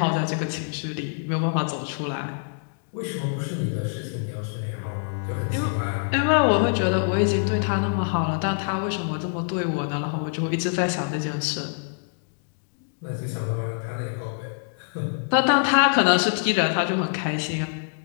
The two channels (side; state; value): right; silent; digital silence